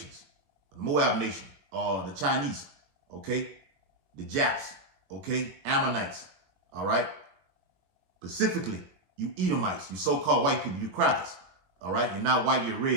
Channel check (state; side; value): late; left; 21 ms